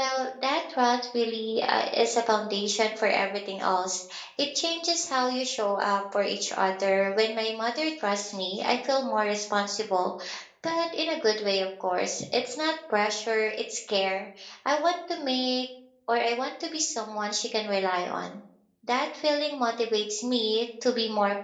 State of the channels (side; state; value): both; identical; correlation 1.00